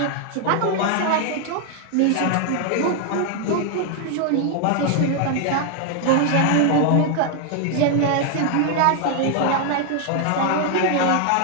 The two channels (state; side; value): different; both; correlation 0.00